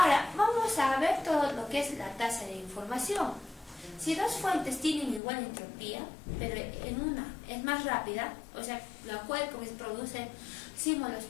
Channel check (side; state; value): right; drops out; at 5.2 s